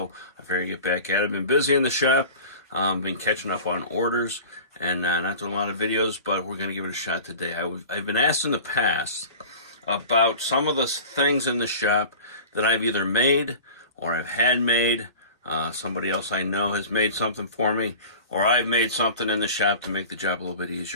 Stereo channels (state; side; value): inverted; both; correlation -0.39